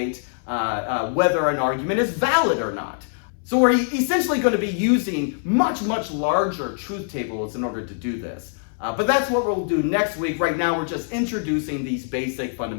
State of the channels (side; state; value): right; silent; 61 dB below the other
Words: whether an argument is valid or not. So we're essentially going to be using much larger truth tables in order to do this. But that's what we'll do next week. Right now, we're just introducing these basic